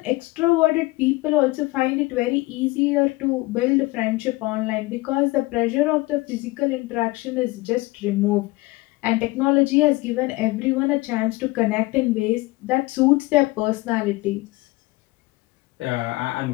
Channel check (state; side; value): quieter; right; 21.4 dB